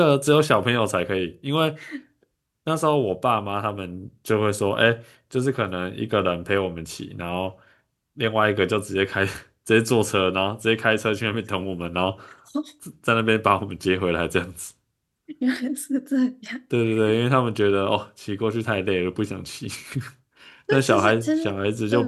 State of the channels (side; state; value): both; identical; correlation 1.00